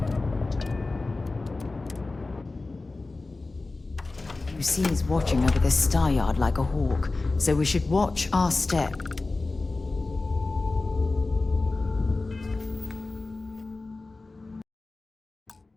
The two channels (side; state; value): right; quieter; 3.4 dB